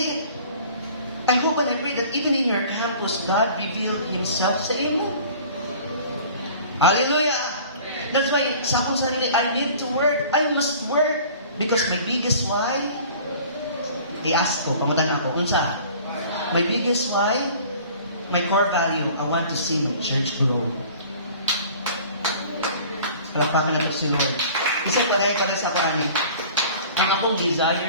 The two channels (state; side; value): inverted; both; correlation -0.47